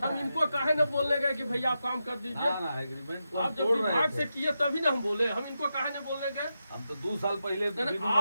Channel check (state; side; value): inverted; both; correlation -0.88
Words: हम है। इनको काहे न बोलने गए कि भैया आप काम कर दीजिए। ना एग्रीमेंट को आप हम जब तोड़ रहे विभाग से थे। किए तभी ना हम बोले, हम इनको काहे न बोलने गए। हम तो 2 साल पहले नहीं, बिनु